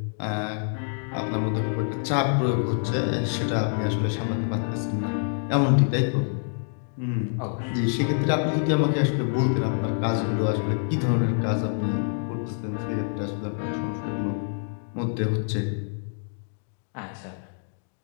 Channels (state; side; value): silent; right; digital silence